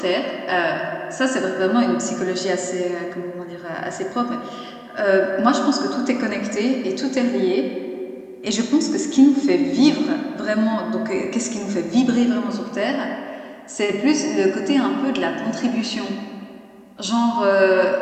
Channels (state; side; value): identical; both; correlation 1.00